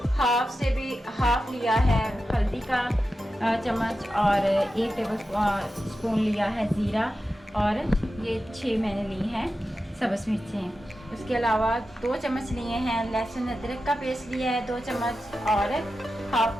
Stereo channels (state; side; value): normal; both; correlation 0.91